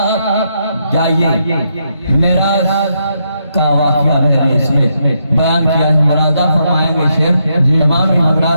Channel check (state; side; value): inverted; both; correlation -0.79